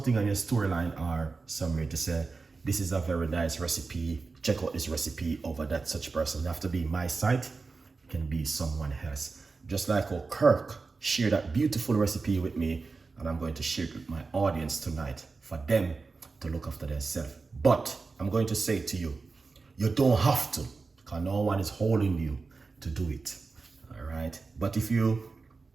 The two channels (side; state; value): left; quieter; 4.2 dB